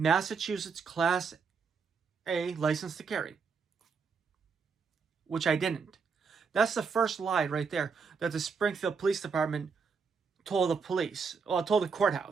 Class A license to carry, which I didn't. That's the first lie right there that the Springfield Police Department told the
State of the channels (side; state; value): left; quieter; 5.4 dB